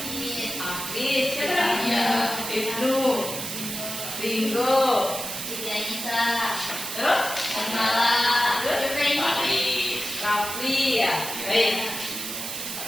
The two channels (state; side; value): noise; right; hiss, 5 dB below the sound